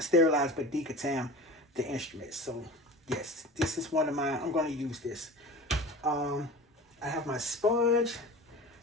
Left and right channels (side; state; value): both; normal; correlation 0.36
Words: sterilize, but decontam the instruments. So yes, this is one of my, I'm going to use this. I have my sponge.